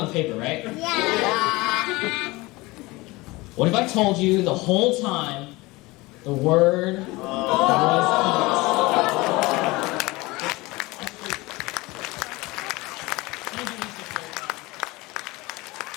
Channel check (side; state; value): right; quieter; 22.2 dB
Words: paper, right? Yeah. What if I told you the whole time the word was eat? Thank you, Mr. Kirkhoff.